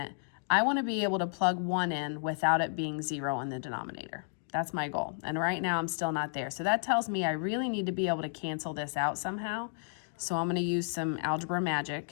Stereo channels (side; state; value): right; silent; digital silence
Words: I want to be able to plug 1 in without it being 0 in the denominator. That's my goal. And right now, I'm still not there. So that tells me I really need to be able to cancel this out somehow. So I'm going to use some algebra magic.